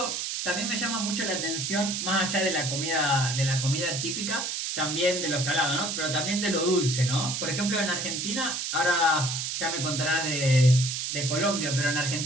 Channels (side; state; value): right; noise; hiss, 2 dB below the sound